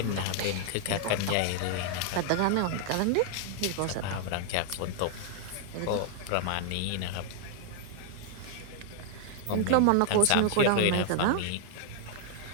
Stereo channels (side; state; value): both; different; correlation 0.00